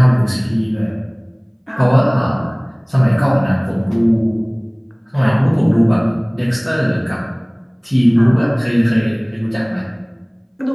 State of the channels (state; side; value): identical; both; correlation 1.00